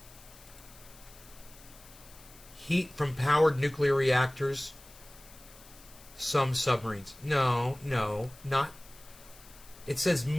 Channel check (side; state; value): left; noise; hiss, 21 dB below the sound